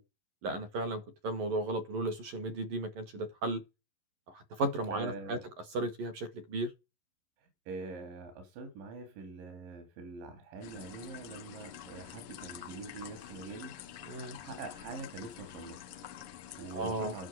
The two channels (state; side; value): late; left; 11 ms